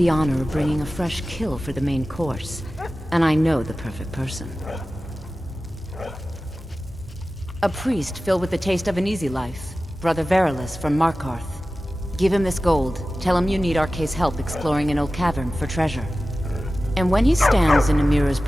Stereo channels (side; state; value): both; normal; correlation 0.95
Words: honor of bringing a fresh kill for the main course, and I know the perfect person. A priest filled with the taste of an easy life, Brother Verilus from Markarth. Give him this gold. Tell him you need Arke's help exploring an old cavern for treasure. And when he stands in Amira's